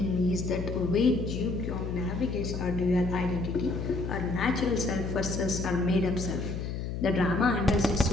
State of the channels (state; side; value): noise; left; hum, 4 dB below the sound